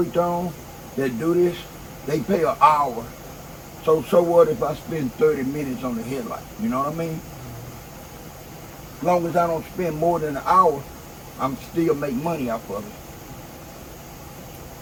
on that do this, they pay an hour. So what if I spend 30 minutes on the headlight? You know what I mean? As long as I don't spend more than an hour, I'm still make money off of it.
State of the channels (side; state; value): both; identical; correlation 1.00